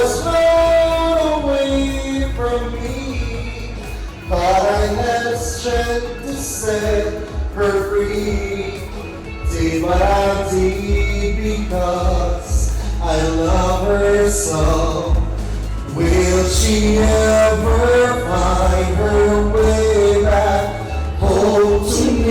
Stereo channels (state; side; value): identical; both; correlation 1.00